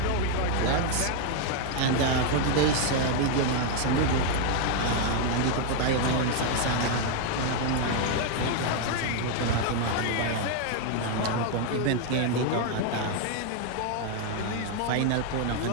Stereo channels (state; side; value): different; both; correlation 0.01